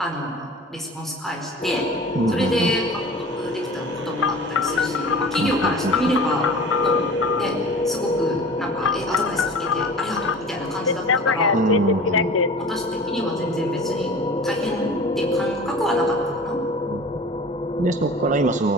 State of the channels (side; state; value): both; normal; correlation 0.40